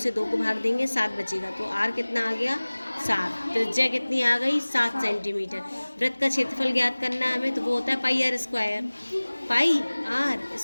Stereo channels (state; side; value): inverted; both; correlation -1.00